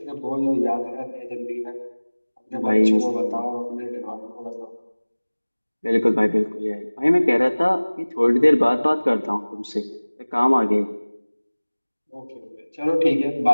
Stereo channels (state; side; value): inverted; both; correlation -1.00